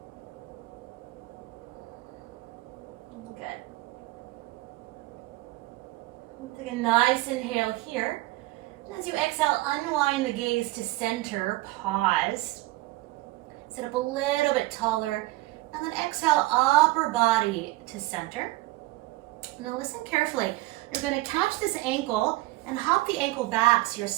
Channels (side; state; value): left; quieter; 19.3 dB